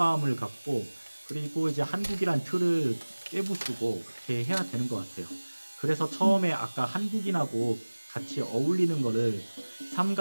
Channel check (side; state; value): both; inverted; correlation -1.00